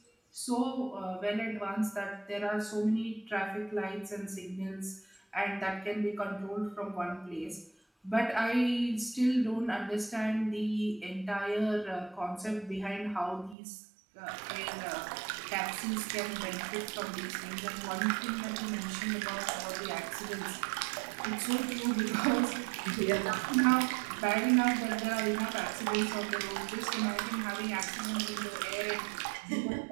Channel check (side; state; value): left; drops out; at 13.6 s